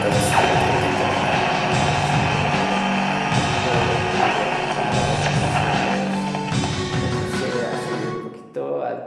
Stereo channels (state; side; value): identical; both; correlation 1.00